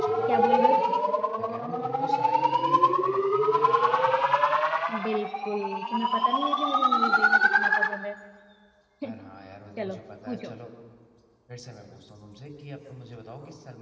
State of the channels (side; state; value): both; identical; correlation 1.00